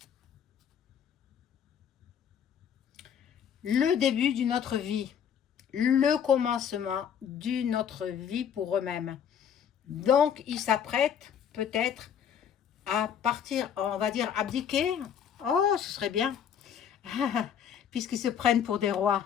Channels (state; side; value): quieter; right; 8.4 dB